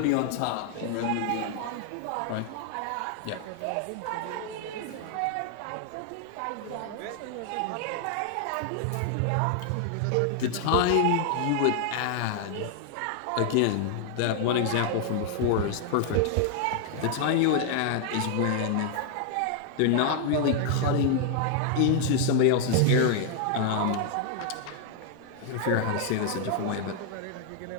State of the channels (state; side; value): different; both; correlation 0.00